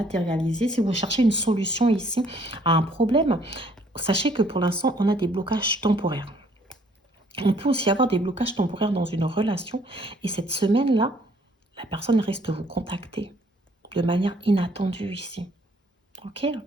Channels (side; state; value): both; normal; correlation 0.62